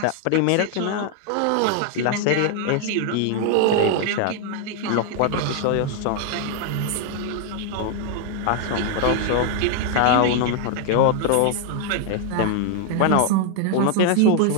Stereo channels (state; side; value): different; both; correlation 0.00